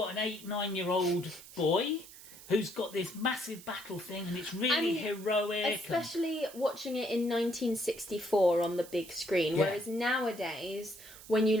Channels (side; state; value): right; noise; hiss, 17 dB below the sound